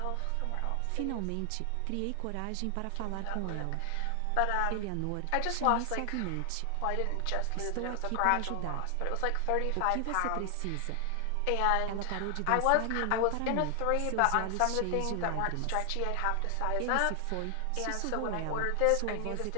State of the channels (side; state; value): both; different; correlation 0.00